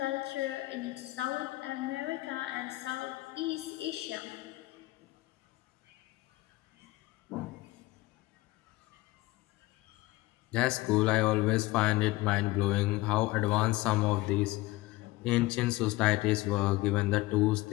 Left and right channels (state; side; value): quieter; right; 19.4 dB